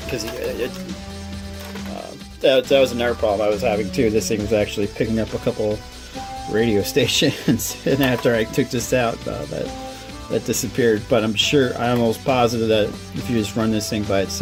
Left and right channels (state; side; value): identical; both; correlation 1.00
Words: because that was another problem I was having too. This thing was actually picking up a couple radio stations, and after I took this out, that disappeared. But I'm almost positive that if you just run this thing by